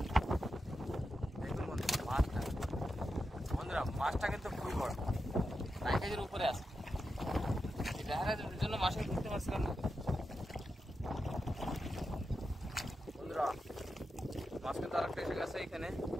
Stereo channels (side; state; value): both; normal; correlation 0.88